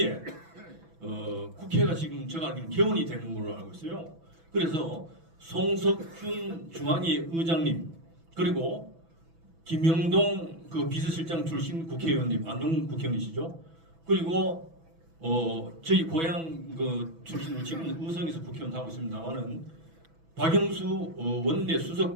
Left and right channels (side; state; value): left; late; 6.1 ms